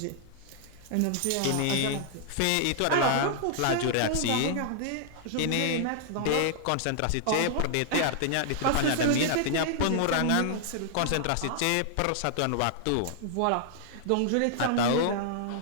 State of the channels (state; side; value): different; both; correlation -0.01